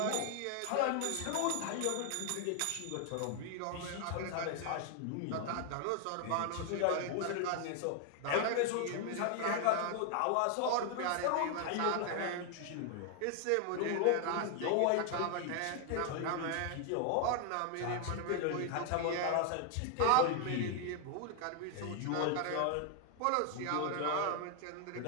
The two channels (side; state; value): both; different; correlation 0.00